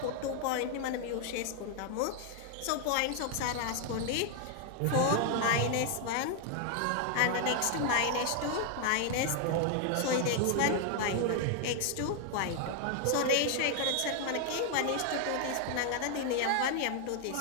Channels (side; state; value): both; different; correlation 0.00